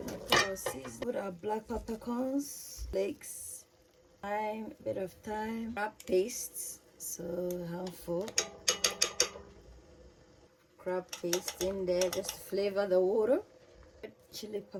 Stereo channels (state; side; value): identical; both; correlation 1.00